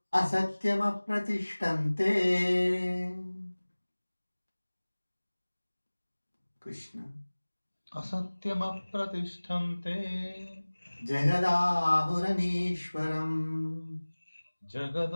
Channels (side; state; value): both; inverted; correlation -1.00